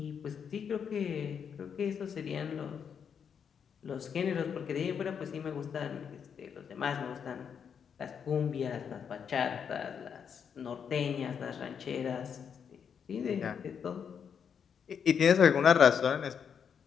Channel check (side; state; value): right; quieter; 7.2 dB